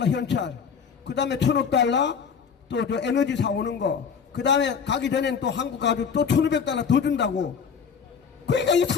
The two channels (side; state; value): right; quieter; 6.5 dB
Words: 현찰. 그 다음에 1,000억 달러 또 저 에너지 사오는 거. 그 다음에 가기 전엔 또 한국 가지고 또 1,500 달러 더 준다고. 그러니까 이